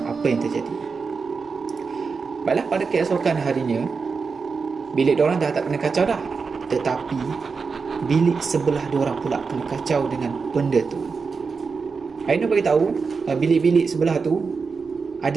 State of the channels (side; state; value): left; quieter; 5.0 dB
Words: apa yang terjadi. Baiklah, pada keesokan harinya bilik diorang dah tak kena kacau dah, tetapi bilik sebelah diorang pula kena kacau dengan benda tu. Ainul beritahu bilik-bilik sebelah tu ada